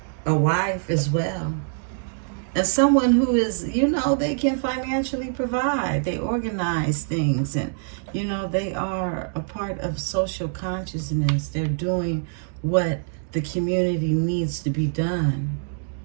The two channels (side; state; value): left; silent; digital silence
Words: a wife as well. And someone who is, you know, they can financially provide. They organize things and, you know, they are a part of social consciousness. They're doing what the community needs to be done.